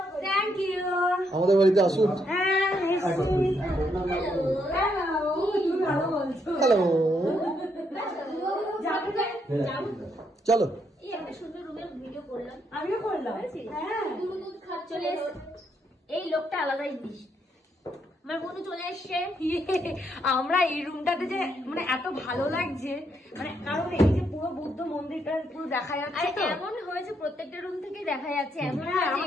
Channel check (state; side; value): normal; both; correlation 0.76